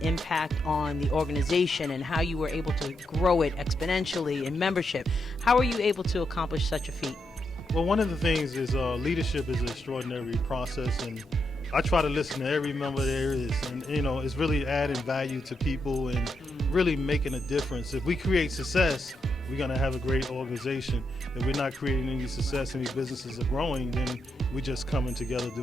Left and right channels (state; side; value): normal; both; correlation 0.82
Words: impact on the organization and how you were able to grow it exponentially in membership. How are you able to accomplish such a feat? Well, one of the things is leadership is an extraordinary process, and I try to listen to every member there is, and it's really adding value to people and really making a difference. If we create success, we're going to have a great organization. If we're not creating any success, any businesses are growing, then we're just coming together